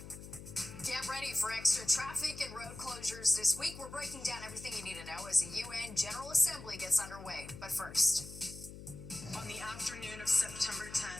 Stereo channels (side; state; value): left; noise; hum, 13 dB below the sound